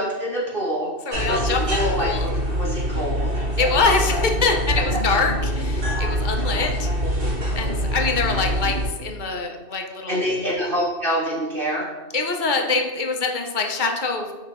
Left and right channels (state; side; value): late; left; 2.6 ms